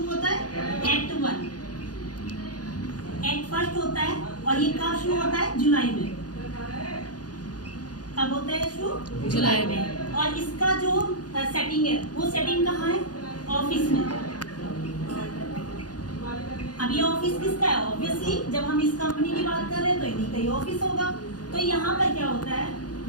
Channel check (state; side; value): late; right; 0.69 ms